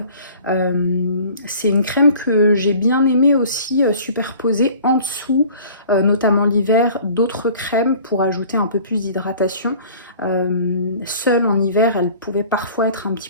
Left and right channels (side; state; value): both; inverted; correlation -0.48